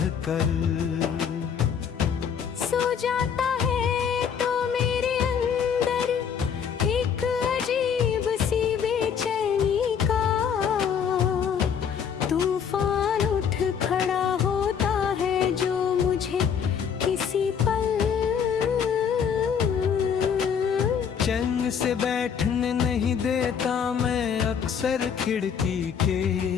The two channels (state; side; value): quieter; right; 7.4 dB